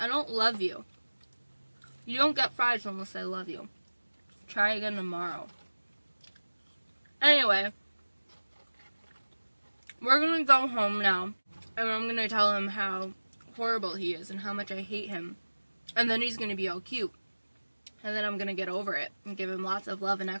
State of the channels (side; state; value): both; inverted; correlation -1.00